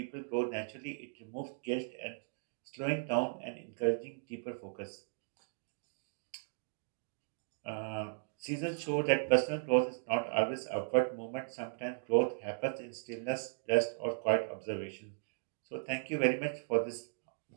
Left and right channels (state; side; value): silent; left; digital silence